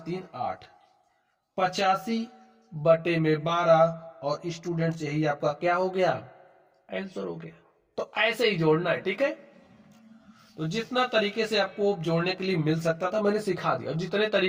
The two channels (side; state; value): both; identical; correlation 1.00